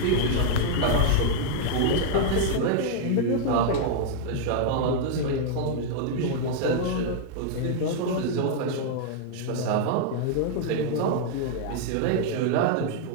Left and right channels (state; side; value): different; both; correlation -0.01